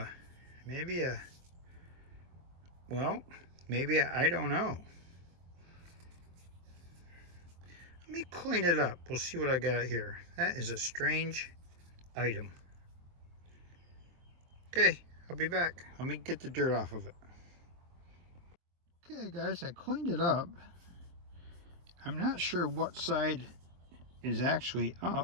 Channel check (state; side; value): late; left; 23 ms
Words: maybe a, well, maybe I don't know. Let me clean it up. We'll see what I got here. That is a strange item. Okay, I'll be back. Let me get the dirt off of it. Okay guys, I cleaned it up. I'm not sure what side is actually